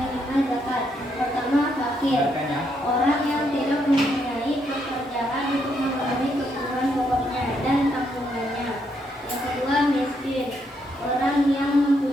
zakat. Pertama, fakir, orang yang tidak mempunyai pekerjaan untuk memenuhi kebutuhan pokoknya dan tanggungannya. Yang kedua, miskin, orang yang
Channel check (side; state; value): both; normal; correlation 0.76